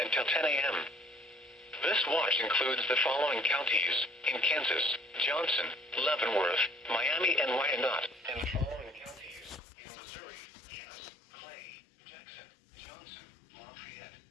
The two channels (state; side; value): drops out; right; at 9.6 s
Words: until 10 a.m. This watch includes the following counties in Kansas: Johnson, Leavenworth, Miami, and Wyandotte, and the following counties in Missouri: Cass, Clay, Jackson, Johnson, Lafayette,